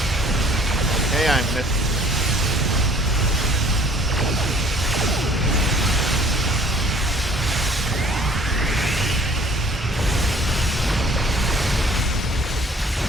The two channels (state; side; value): normal; both; correlation 0.54